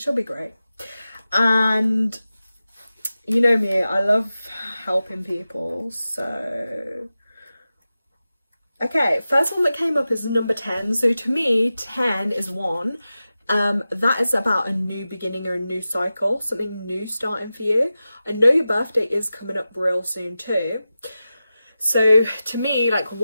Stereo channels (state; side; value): inverted; both; correlation -0.93